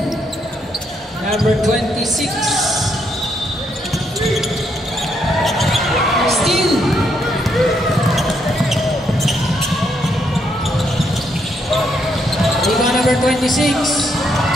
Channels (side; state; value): both; normal; correlation 0.75